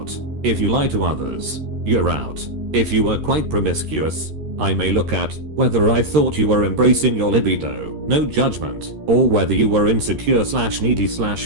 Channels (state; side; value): late; left; 13 ms